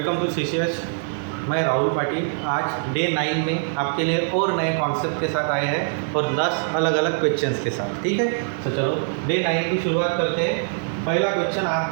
to CCH। मैं राहुल पाटिल आज day 9 में आपके लिए और नए कॉन्सेप्ट के साथ आए हैं और 10 अलग अलग क्वेश्चंस के साथ। ठीक है, तो चलो डे 9 की शुरुआत करते हैं। पहला क्वेश्चन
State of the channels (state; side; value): silent; left; digital silence